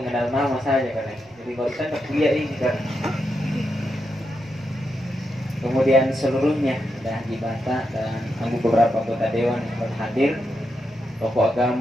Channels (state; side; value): noise; right; rumble, 29 dB below the sound